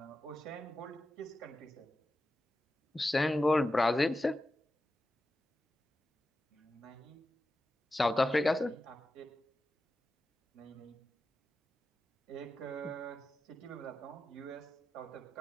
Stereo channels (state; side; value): normal; both; correlation 0.92